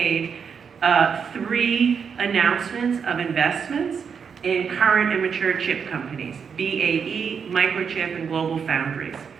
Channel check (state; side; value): quieter; left; 6.5 dB